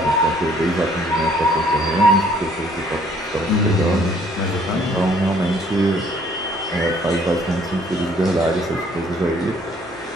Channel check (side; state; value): both; normal; correlation 0.61